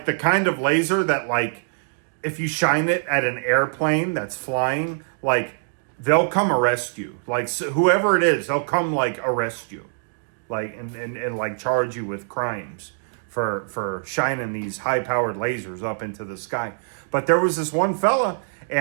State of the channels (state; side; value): silent; left; digital silence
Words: the kind of laser that, like, if you shine it at an airplane that's flying, like, they'll come arrest you. Like, so whoever it is, they'll come, like, arrest you. Like, and like, charge you with crimes for shining these high-powered lasers up into the sky. But there was this one fella,